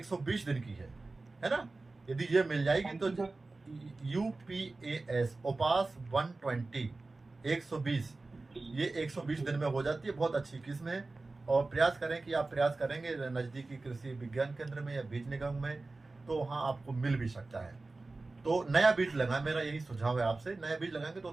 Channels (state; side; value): quieter; left; 3.4 dB